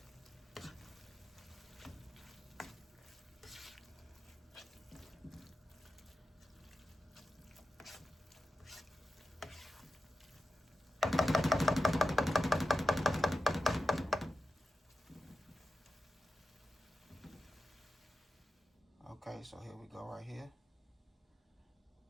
Okay, so here we go right here.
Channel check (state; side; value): normal; both; correlation 0.91